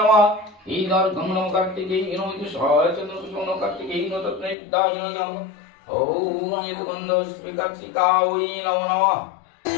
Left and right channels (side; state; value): right; drops out; at 4.5 s